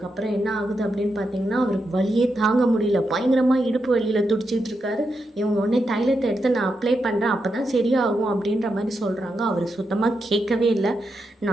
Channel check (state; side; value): normal; both; correlation 0.85